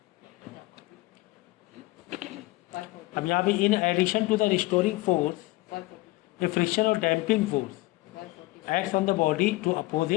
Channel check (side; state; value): right; quieter; 20.6 dB